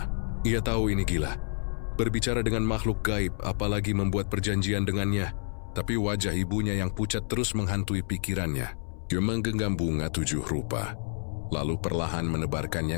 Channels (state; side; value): silent; right; 59 dB below the other